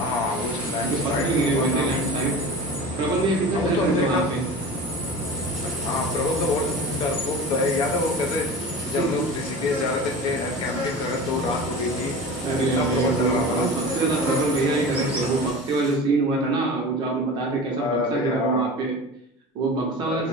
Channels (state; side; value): normal; both; correlation 0.33